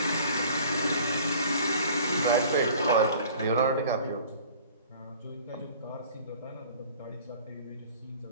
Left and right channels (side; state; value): both; inverted; correlation -0.48